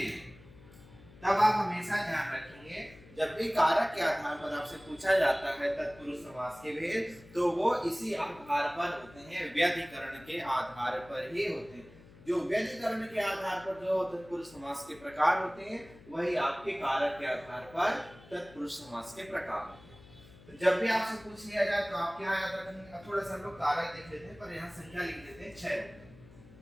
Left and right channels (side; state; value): left; noise; hum, 22 dB below the sound